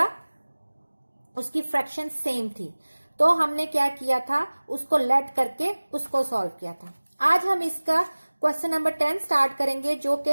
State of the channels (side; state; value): both; inverted; correlation -1.00